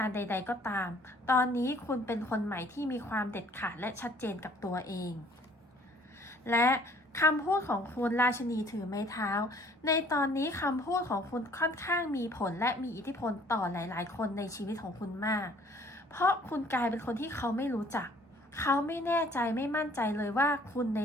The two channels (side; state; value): both; normal; correlation 0.57